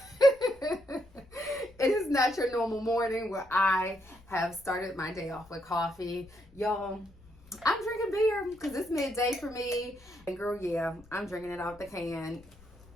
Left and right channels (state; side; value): noise; left; rumble, 25 dB below the sound